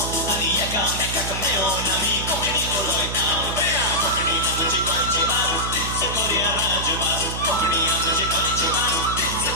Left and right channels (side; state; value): right; noise; hum, 5 dB below the sound